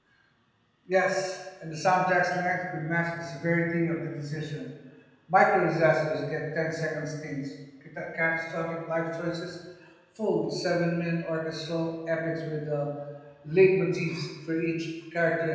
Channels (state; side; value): identical; both; correlation 1.00